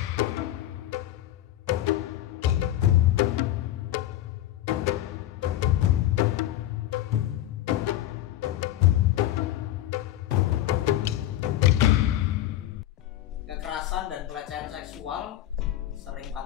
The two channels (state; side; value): quieter; right; 13.6 dB